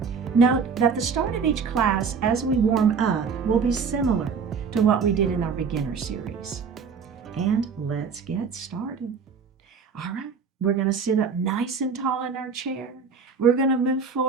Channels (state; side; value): quieter; left; 5.7 dB